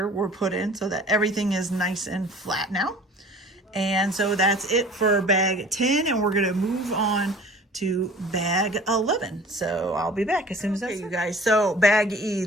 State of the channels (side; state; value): both; normal; correlation 0.46